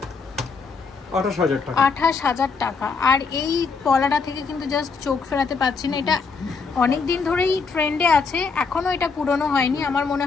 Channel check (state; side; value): quieter; right; 4.9 dB